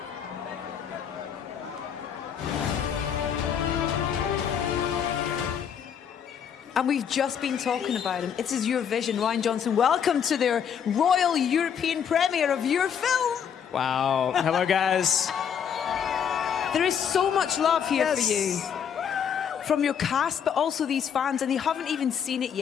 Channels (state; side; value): quieter; right; 7.9 dB